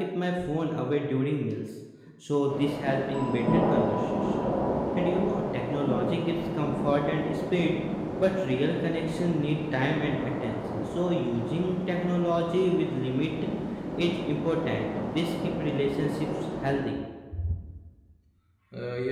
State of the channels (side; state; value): both; identical; correlation 1.00